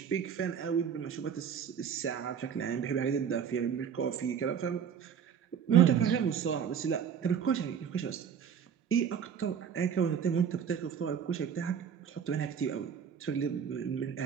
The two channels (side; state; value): left; quieter; 7.8 dB